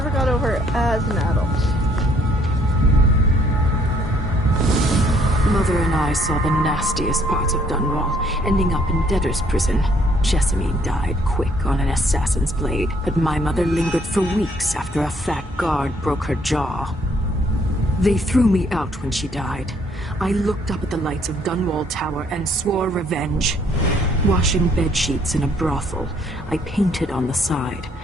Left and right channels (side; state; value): both; normal; correlation 0.65